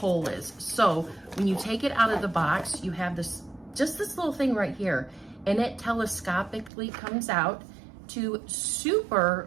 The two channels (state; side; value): drops out; left; at 6.7 s